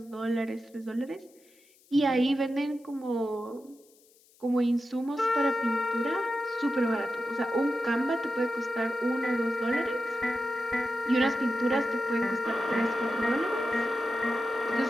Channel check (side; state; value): left; noise; hiss, 30 dB below the sound